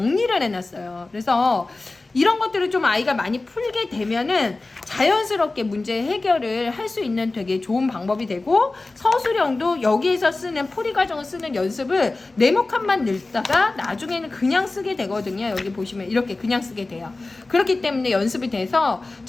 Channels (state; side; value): quieter; right; 3.3 dB